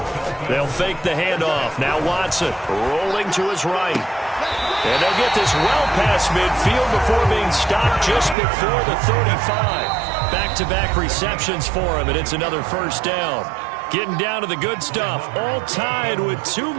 They'll fake the handoff. Now Watson rolling to his right. And they'll get this well past midfield before being stopped just before the 35. Back-to-back receptions for him, and it's another 1st down. Getting down to the good stuff. All tied with 2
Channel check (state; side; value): drops out; left; at 8.3 s